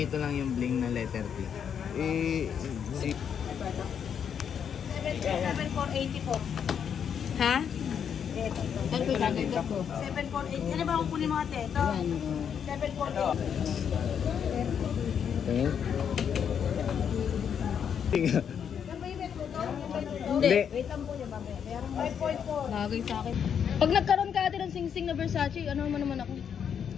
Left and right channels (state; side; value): quieter; right; 7.9 dB